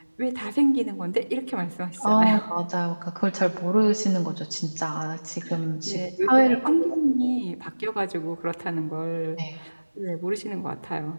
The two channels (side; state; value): both; inverted; correlation -1.00